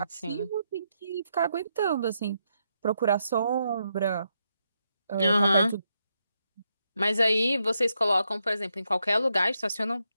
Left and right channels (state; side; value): inverted; both; correlation -0.81